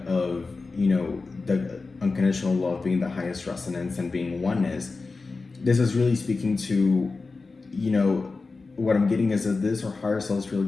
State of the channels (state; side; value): quieter; right; 4.0 dB